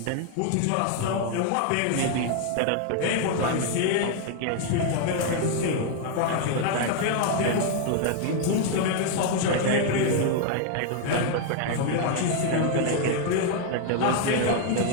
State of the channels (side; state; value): both; different; correlation 0.00